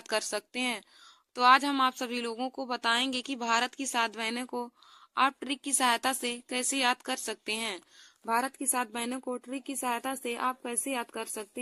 कर सकते हैं। तो आज हम आप सभी लोगों को बताएंगे कि भारत की 7 बहनों को आप ट्रिक की सहायता से कैसे याद कर सकते हैं। भारत की 7 बहनों को ट्रिक की सहायता से आप कैसे याद कर सकते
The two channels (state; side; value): identical; both; correlation 1.00